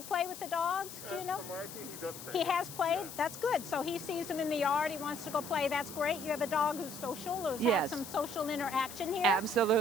play with the dogs? Do you know? From what I see, he does play. He has played? That's good. So he sees them in the yard. He wants to go play. That's great. You have a dog who's social, or has Yes. some social interaction here.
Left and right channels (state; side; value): noise; left; hiss, 12 dB below the sound